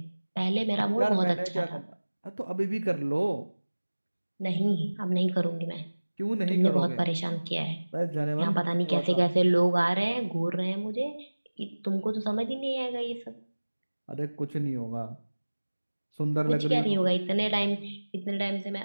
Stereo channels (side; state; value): both; inverted; correlation -1.00